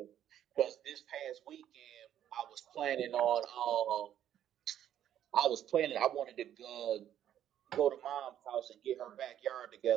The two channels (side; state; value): left; quieter; 10.8 dB